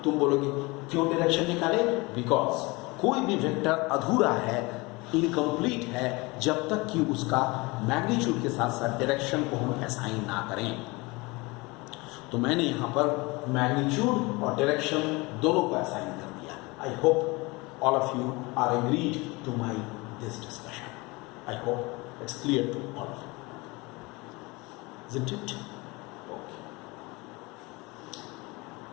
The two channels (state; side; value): quieter; right; 24.8 dB